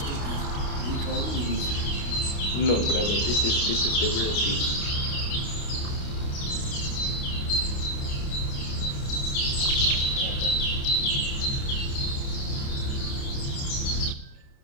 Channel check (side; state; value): right; late; 29 ms